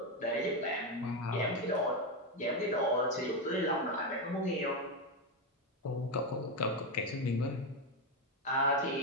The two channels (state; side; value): normal; both; correlation 0.09